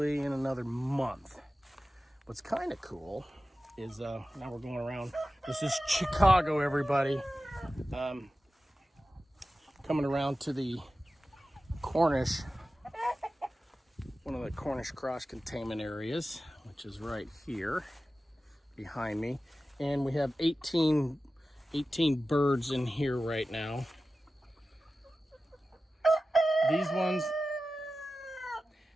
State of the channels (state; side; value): normal; both; correlation 0.95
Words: in another month. What's kind of cool is now we're going around. This is Chickago, everybody. Coming around to the Cornish, one of the Cornish cross containment areas, which is right here behind me. And we have 18 birds in here right now.